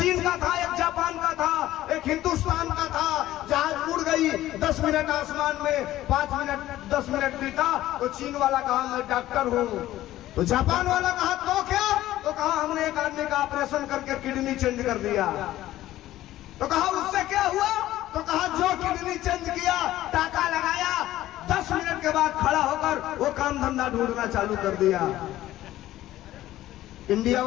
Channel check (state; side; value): quieter; right; 14.6 dB